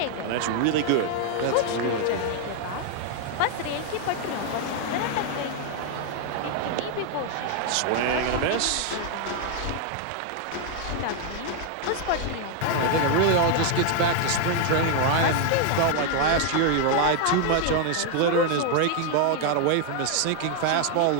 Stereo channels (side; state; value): both; different; correlation 0.00